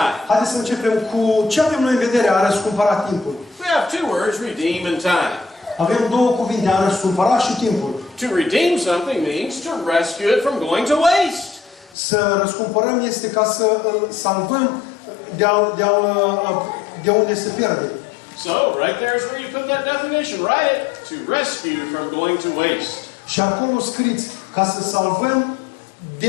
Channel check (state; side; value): drops out; right; at 12.0 s